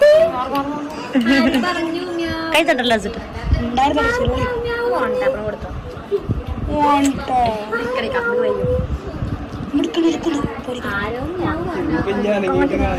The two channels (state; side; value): identical; both; correlation 1.00